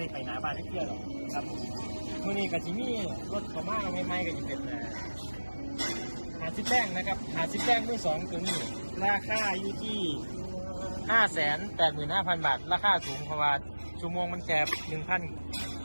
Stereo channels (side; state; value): both; inverted; correlation -1.00